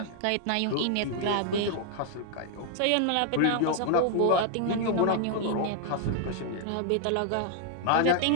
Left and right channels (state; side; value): different; both; correlation 0.00